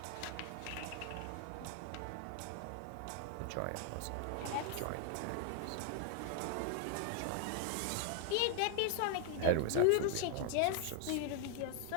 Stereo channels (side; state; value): both; different; correlation -0.01